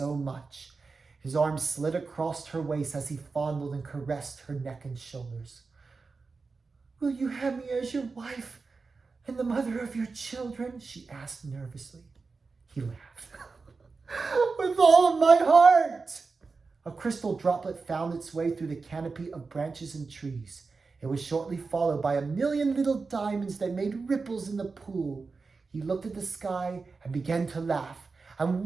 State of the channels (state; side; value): quieter; left; 4.3 dB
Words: much. His arm slid across her waist as he fondled and caressed her neck and shoulders. "Will you have me as your wife and the mother of your children?" she asked nervously. He laughed. "With all of my heart!" A crystal droplet found its way through the canopy of branches and trees. It was shortly followed by a million little diamonds that made ripples in the pool. He looked at the sky and began to laugh. And